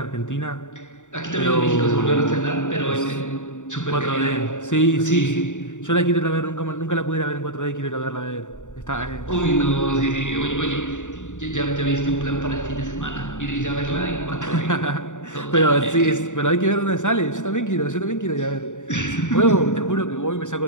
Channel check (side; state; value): right; late; 0.86 ms